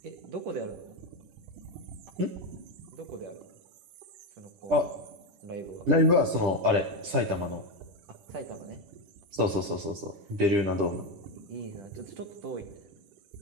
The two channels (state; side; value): late; left; 10 ms